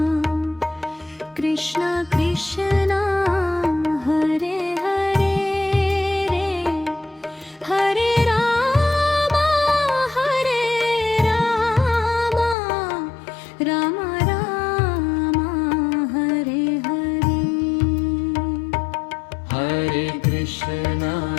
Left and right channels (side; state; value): right; drops out; at 12.6 s